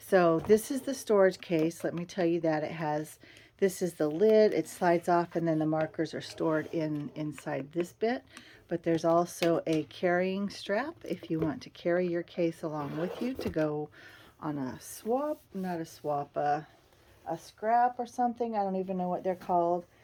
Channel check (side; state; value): both; identical; correlation 1.00